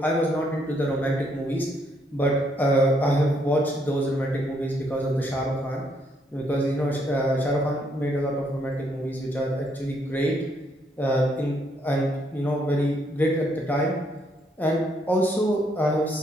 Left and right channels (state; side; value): normal; both; correlation 0.72